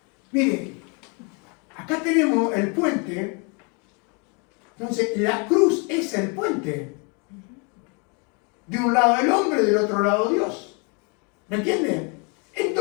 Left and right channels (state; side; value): quieter; right; 33.8 dB